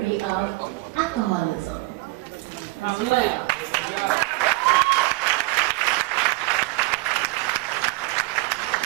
me of alcoholism as well.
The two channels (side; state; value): left; quieter; 22.6 dB